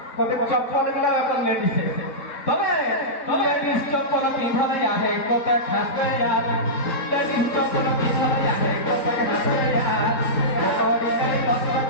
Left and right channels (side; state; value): right; late; 3.6 ms